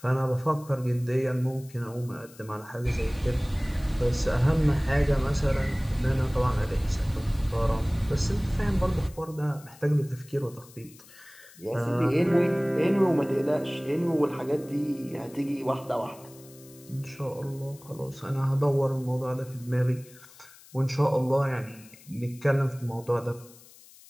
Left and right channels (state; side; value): noise; left; hiss, 23 dB below the sound